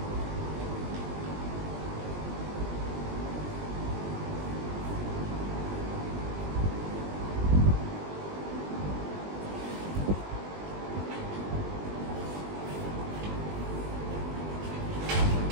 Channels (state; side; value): late; left; 20 ms